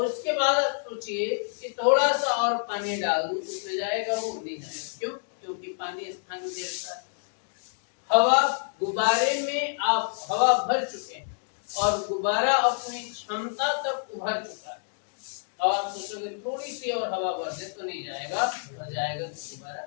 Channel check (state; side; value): silent; right; digital silence